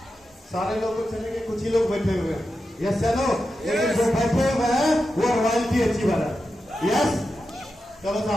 सारे लोग तो चलेंगे, कुछ ही लोग बैठे हुए हैं। यस चलो, लेकिन जो बैठे हुए हैं वो रॉयल्टी अचीवर है। यस चलो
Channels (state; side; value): normal; both; correlation 0.90